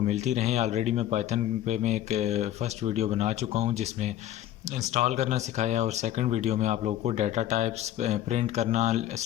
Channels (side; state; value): right; quieter; 12.3 dB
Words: मिलती रहें। ऑलरेडी मैं पाइथन पे मैं एक फ़र्स्ट वीडियो बना चुका हूँ जिसमें इंस्टॉल करना सिखाया, और सेकंड वीडियो में आप लोगों को डाटा टाइप्स प्रिंट करना,